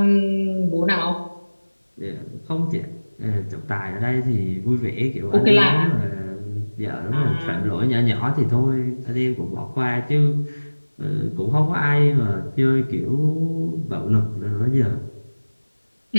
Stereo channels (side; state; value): both; inverted; correlation -1.00